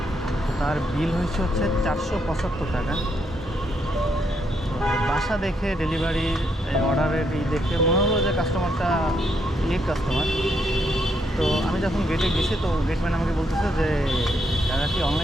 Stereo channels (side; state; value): both; normal; correlation 0.76